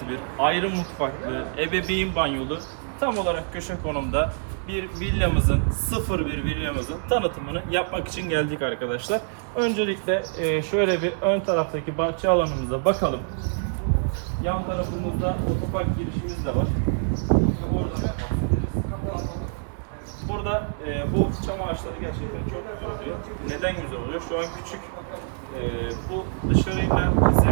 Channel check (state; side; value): silent; left; digital silence